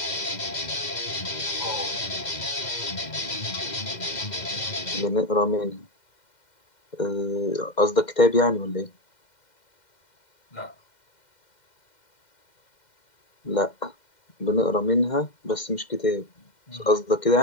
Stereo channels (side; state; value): right; late; 2.1 ms